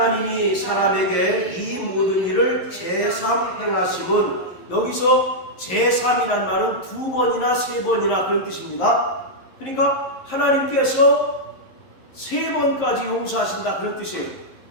사람에게 이 모든 일을 제3 행하심은, 여기서 제3이란 말은 2번이나 3번이나 그런 뜻입니다. 그러니까 하나님께서 3번까지 용서하신다 그런 뜻이에요.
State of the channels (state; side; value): late; right; 11 ms